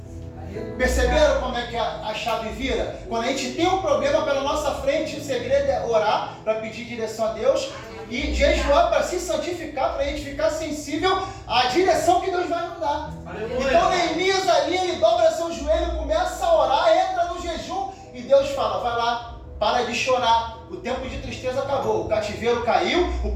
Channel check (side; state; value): both; identical; correlation 1.00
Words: Perceberam como é que a chave vira? Quando a gente tem um problema pela nossa frente, o segredo é orar para pedir direção a Deus e jejuar para se santificar, para a gente ficar sensível à direção que Deus vai nos dar. Então Neemias ali, ele dobra seu joelho, começa a orar, entra no jejum e Deus fala: vai lá, para de chorar, o tempo de tristeza acabou, o cativeiro caiu, o